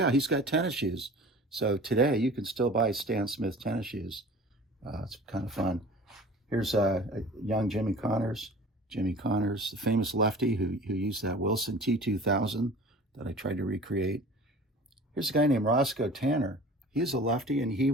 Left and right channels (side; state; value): both; normal; correlation 0.42